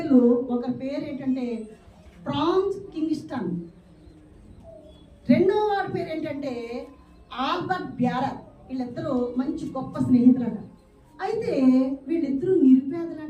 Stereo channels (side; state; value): both; identical; correlation 1.00